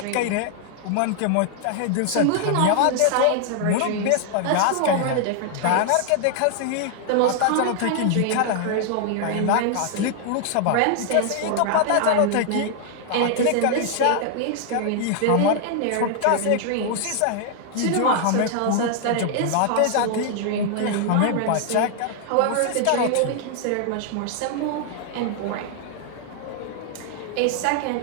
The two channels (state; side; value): different; both; correlation 0.00